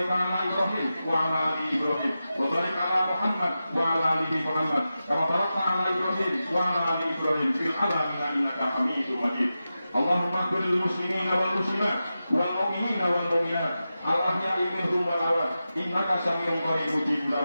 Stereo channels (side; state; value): both; inverted; correlation -0.92